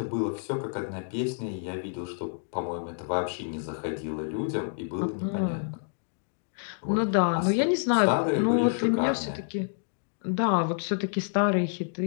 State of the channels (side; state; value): right; silent; digital silence